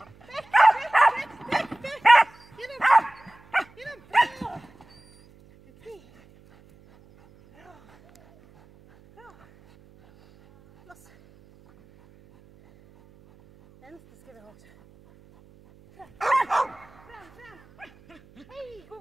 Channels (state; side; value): noise; right; hum, 28 dB below the sound